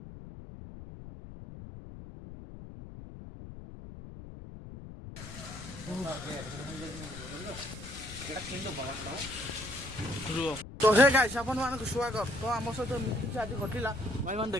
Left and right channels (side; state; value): left; noise; rumble, 12 dB below the sound